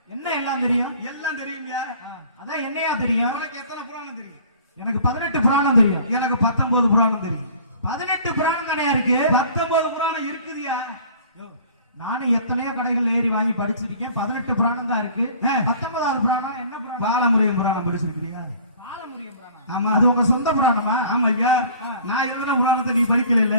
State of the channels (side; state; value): both; inverted; correlation -0.49